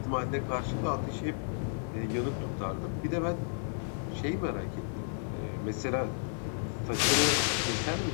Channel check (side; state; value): right; silent; 56 dB below the other